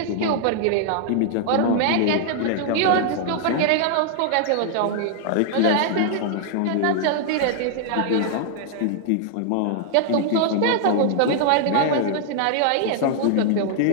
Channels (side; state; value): both; different; correlation -0.01